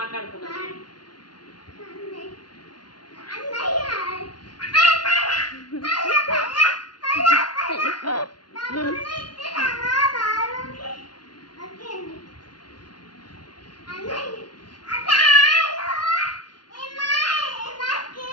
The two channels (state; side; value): late; right; 0.71 ms